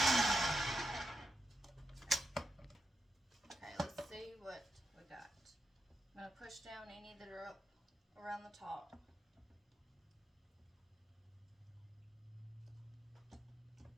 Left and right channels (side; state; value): both; normal; correlation 0.85